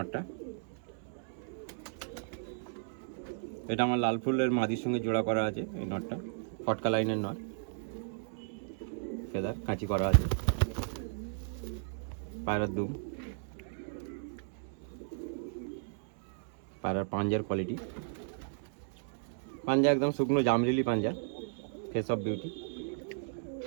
এটা আমার লাল ফুলের মাদির সঙ্গে জোড়া করা আছে। এই নটটা ফটকা লাইনের নট, ফেদার কাঁচি করা আছে। পায়রার দুম, পায়রার পাঞ্জার কোয়ালিটি, পাঞ্জা একদম শুকনো জামরিলি পাঞ্জা, ফেস অফ বিউটি।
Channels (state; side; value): silent; left; 55 dB below the other